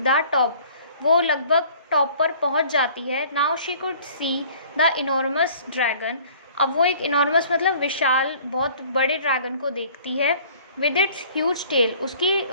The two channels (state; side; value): inverted; both; correlation -0.51